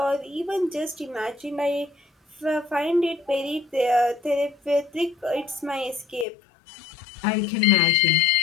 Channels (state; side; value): drops out; right; at 6.2 s